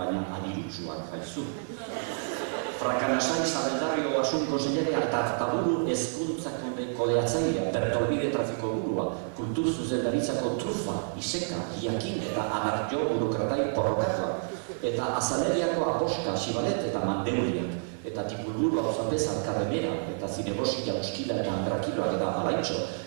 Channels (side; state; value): left; silent; 59 dB below the other